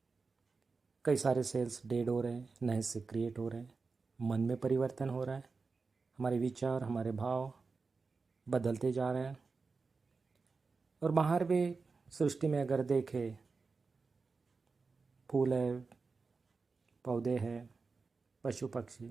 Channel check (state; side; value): quieter; left; 4.4 dB